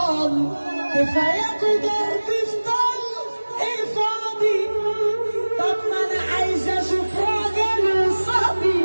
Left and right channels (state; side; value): inverted; both; correlation -1.00